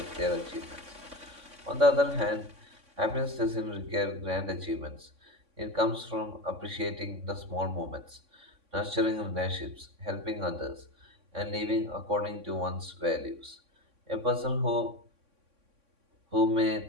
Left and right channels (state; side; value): late; left; 3.6 ms